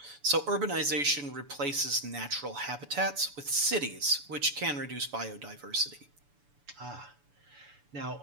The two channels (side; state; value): left; late; 7.0 ms